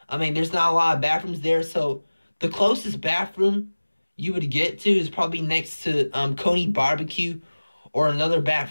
I mean, there's not a lot of bathrooms there, so the closest bathroom you would get to is probably next to Coney Barbecue, or another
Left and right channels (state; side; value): inverted; both; correlation -1.00